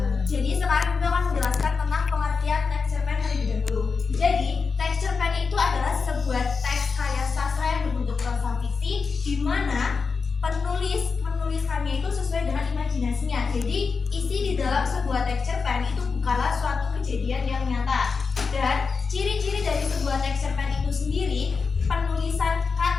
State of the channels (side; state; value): right; quieter; 4.9 dB